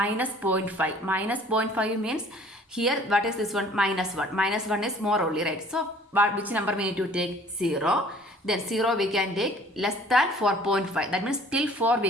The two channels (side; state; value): both; normal; correlation 0.52